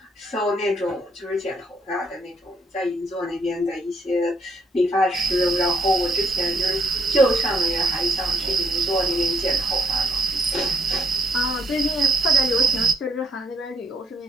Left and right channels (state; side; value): normal; both; correlation 0.70